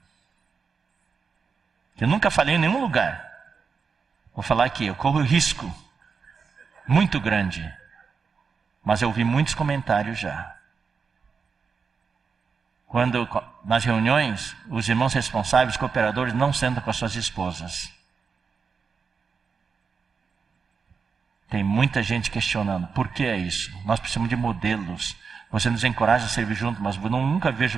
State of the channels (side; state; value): left; quieter; 5.5 dB